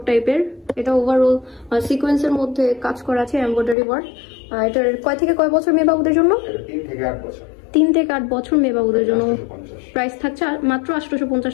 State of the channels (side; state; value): right; drops out; at 3.8 s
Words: টাইপের। এটা ওভারঅল সিকোয়েন্সের মধ্যে কাজ করা আছে, এমব্রয়ডারি ওয়ার্ক। এটার কয় থেকে কয় বছর মেয়ে বাবুদের জন্য? 3 থেকে 8 বছর মেয়ে বাবুদের জন্য। প্রাইস থাকছে মাত্র